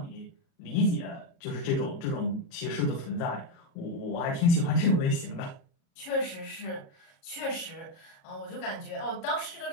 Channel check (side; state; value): right; late; 37 ms